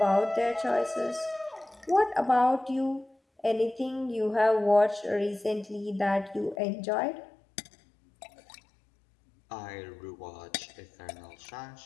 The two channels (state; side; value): drops out; right; at 6.6 s